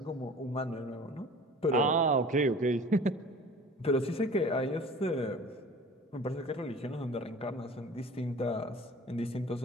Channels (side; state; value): both; normal; correlation 0.44